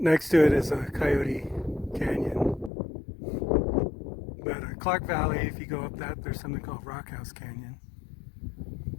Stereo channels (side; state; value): right; drops out; at 2.7 s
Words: to it is a Coyote Canyon. But Clark Valley, if you go up that, there's something called Rock House Canyon.